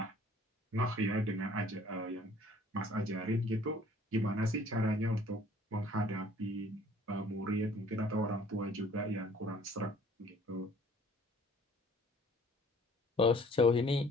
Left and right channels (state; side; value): normal; both; correlation 0.55